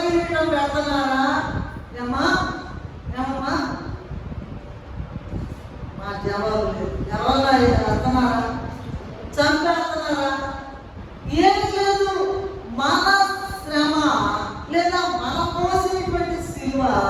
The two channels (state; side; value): identical; both; correlation 1.00